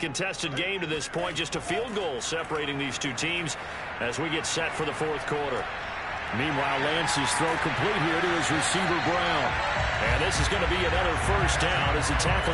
game to this point. Just a field goal separating these two teams as we get set for the 4th quarter. Meanwhile, Lance's throw complete here to his receiver, Brown. And this is going to be another first down as the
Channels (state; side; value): identical; both; correlation 1.00